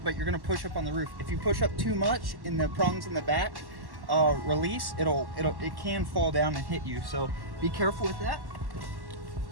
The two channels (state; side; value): late; left; 1.1 ms